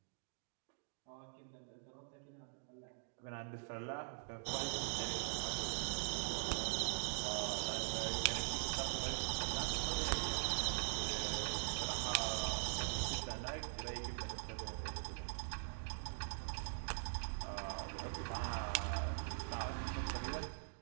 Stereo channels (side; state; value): left; silent; digital silence